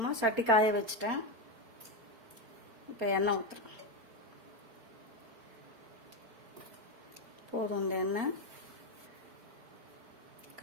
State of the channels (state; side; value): late; left; 4.4 ms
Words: சட்டி காய வச்சுட்டேன். இப்போ எண்ணெய் ஊற்றுறேன். போதும் இந்த எண்ணெய்.